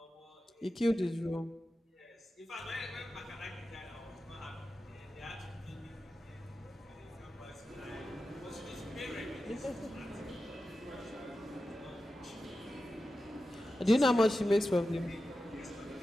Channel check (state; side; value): normal; both; correlation 0.92